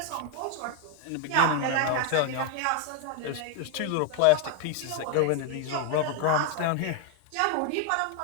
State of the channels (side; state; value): both; different; correlation 0.01